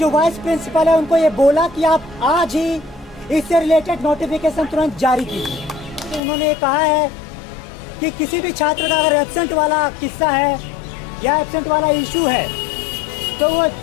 वाइस प्रिंसिपल है उनको ये बोला कि आप आज ही इससे रिलेटेड नोटिफिकेशन तुरंत जारी कीजिए। तो उन्होंने कहा है कि किसी भी छात्र का अगर एब्सेंट वाला किस्सा है या एब्सेंट वाला इशू है तो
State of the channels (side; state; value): right; drops out; at 6.2 s